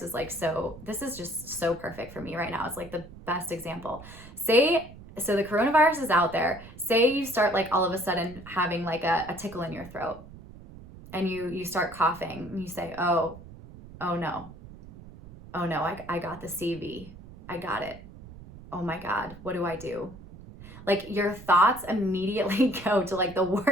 is like, so this is just so perfect for me right now. It's like the best example. So the coronavirus is out there. Say you start like all of a sudden having like a tickle in your throat and you start coughing and you say, oh no, I got the CV. I got it. Oh my God, what do I do? Like your thoughts immediately go to like the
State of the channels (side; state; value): right; noise; rumble, 17 dB below the sound